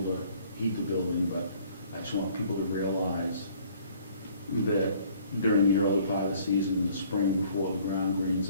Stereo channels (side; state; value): both; inverted; correlation -0.57